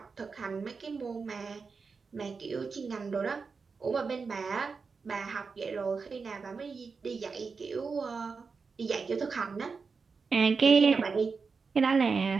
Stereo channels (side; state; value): left; quieter; 4.9 dB